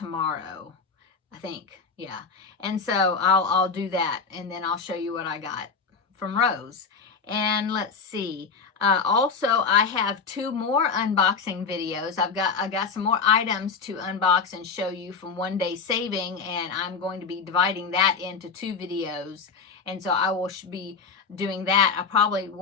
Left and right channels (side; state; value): right; quieter; 5.2 dB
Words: I think. Yeah. And so I'll do that, and then I'll show you what I got from Rose. And let's see. Also, I have 2 more unboxing videos. I got some more items to unbox and show you from One Day Saving, and I'm going to be dividing that into 2 videos. And so I will be doing that. I'll probably